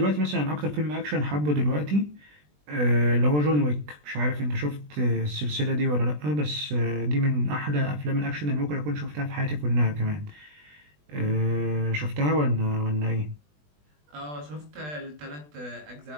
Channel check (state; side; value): late; left; 20 ms